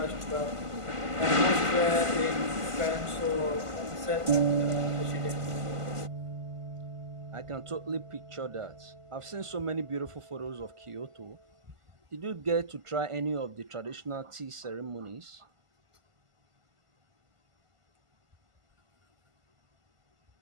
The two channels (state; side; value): late; left; 1.5 ms